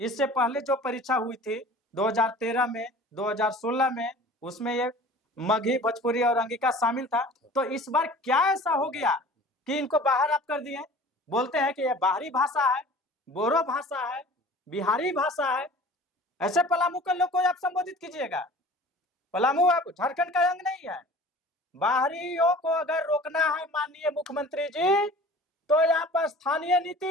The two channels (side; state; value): both; normal; correlation 0.44